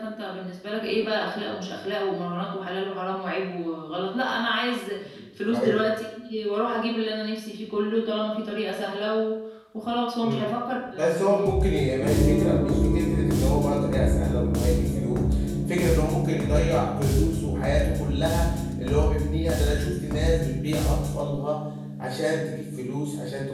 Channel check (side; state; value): both; identical; correlation 1.00